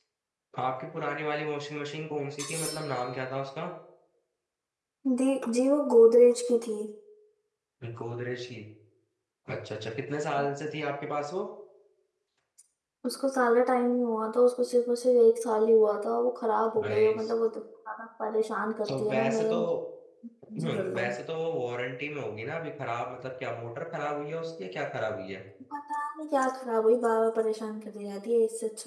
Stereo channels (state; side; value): identical; both; correlation 1.00